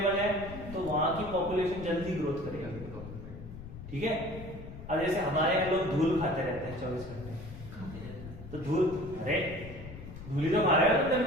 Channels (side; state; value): left; noise; rumble, 13 dB below the sound